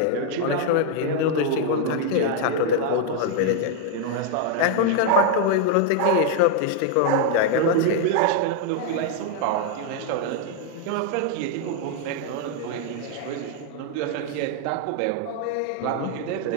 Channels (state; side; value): different; both; correlation 0.00